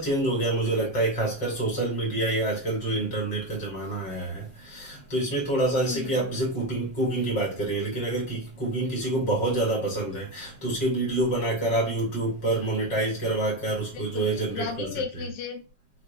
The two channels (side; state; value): right; late; 7.4 ms